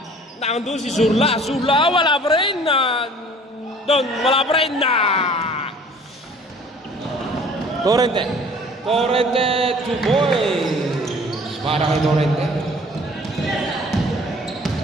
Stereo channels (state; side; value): normal; both; correlation 0.51